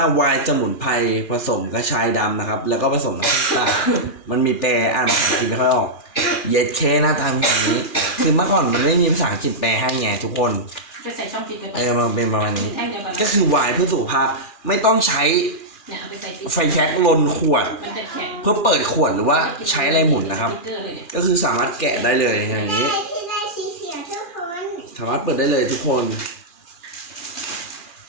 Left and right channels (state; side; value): late; right; 2.4 ms